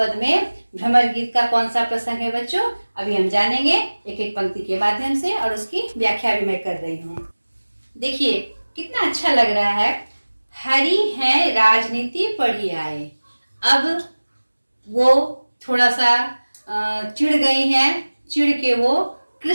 में भ्रमर गीत का कौन सा प्रसंग है बच्चों, अभी हम जानेंगे एक एक पंक्ति के माध्यम से, और उसकी व्याख्या भी मैं कर रही हूँ। देखिए कितना अच्छा लग रहा है। हरि है राजनीति पढ़ी आए। अब वो थोड़ा सा चिढ़ गई हैं, चिढ़ के वो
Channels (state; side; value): inverted; both; correlation -1.00